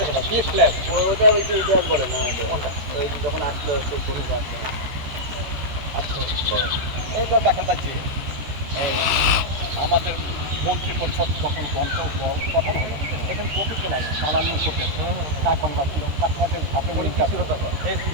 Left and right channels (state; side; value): late; left; 14 ms